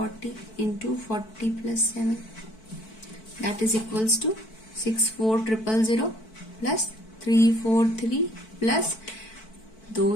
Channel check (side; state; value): right; late; 4.5 ms